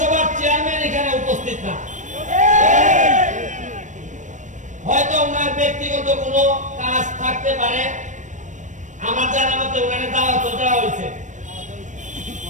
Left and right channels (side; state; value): left; late; 0.36 ms